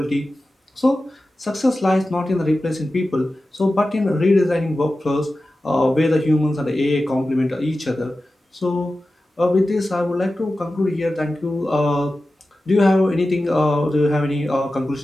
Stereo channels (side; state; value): both; normal; correlation 0.94